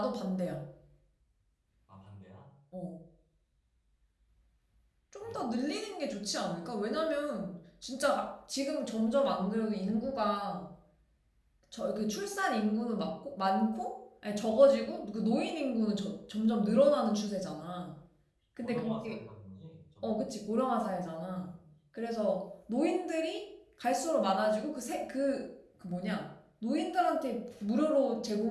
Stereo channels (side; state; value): both; identical; correlation 1.00